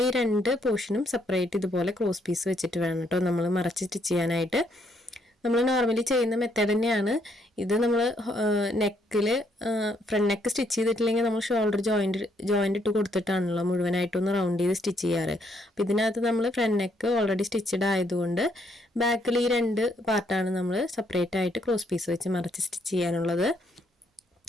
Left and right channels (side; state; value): both; normal; correlation 0.72